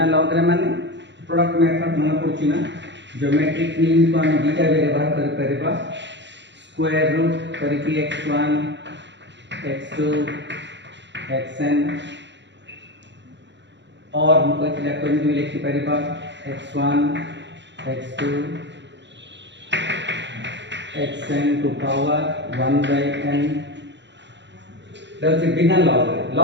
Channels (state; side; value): late; left; 0.52 ms